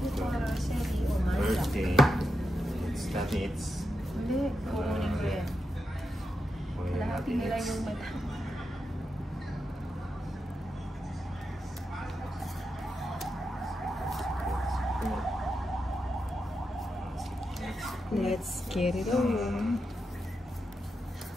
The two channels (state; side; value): normal; both; correlation 0.87